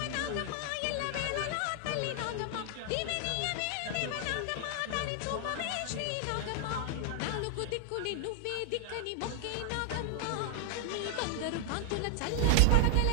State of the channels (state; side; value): different; both; correlation 0.00